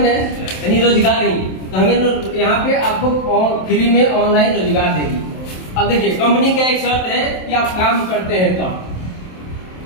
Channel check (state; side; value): late; right; 27 ms